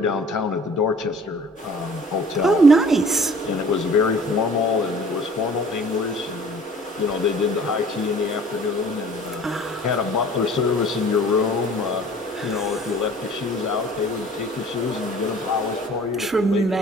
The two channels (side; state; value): both; normal; correlation 0.49